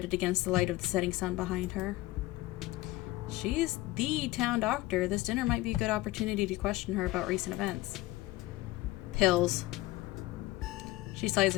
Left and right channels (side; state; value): right; quieter; 18.7 dB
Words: against the light of the setting sun behind her. She's the town doctor. This dinner might be a good opportunity to question her about recent events. Pills. She slides